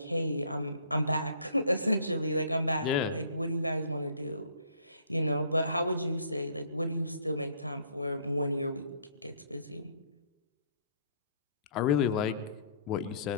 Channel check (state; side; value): inverted; both; correlation -0.58